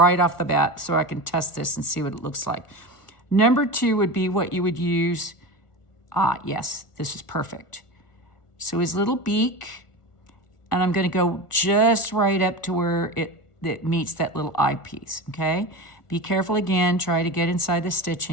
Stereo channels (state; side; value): late; right; 1.4 ms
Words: off the bat so I can test this and see what it looks like. Number 2 would be what you would use. Yes, this is perfect. So his little beak, and I'm gonna go just right up to where it meets that little eyepiece, okay? Be careful again, try to get inside the